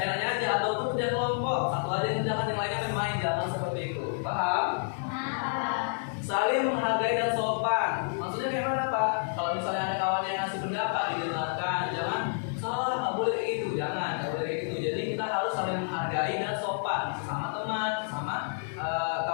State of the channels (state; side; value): silent; right; digital silence